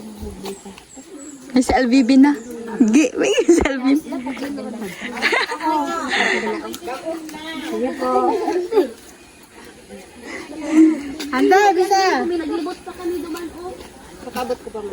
May si LVB na. May si LVB. Handa, bisa.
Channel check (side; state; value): both; identical; correlation 1.00